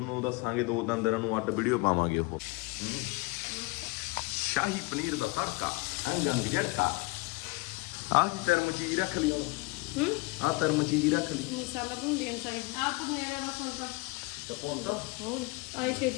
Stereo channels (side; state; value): right; quieter; 24.8 dB